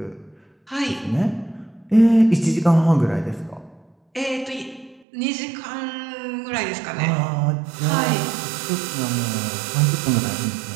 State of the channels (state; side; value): drops out; left; at 5.1 s